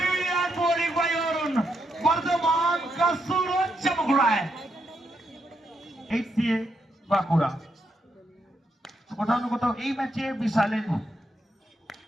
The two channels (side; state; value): both; normal; correlation 0.80